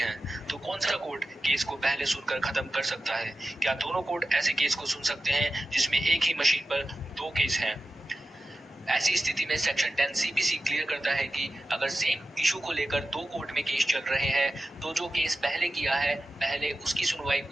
तो कौन सा कोर्ट केस को पहले सुनकर खत्म कर सकता है? क्या दोनों कोर्ट ऐसे केस को सुन सकते हैं जिसमें एक ही मशीन पर दो केस हैं? ऐसी स्थिति में सेक्शन 10 सीपीसी क्लियर करता है कि अगर सेम इशू को लेकर दो कोर्ट में केस चल रहे हैं तो जो केस पहले किया है पहले उसकी सुनवाई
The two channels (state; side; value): normal; both; correlation 0.93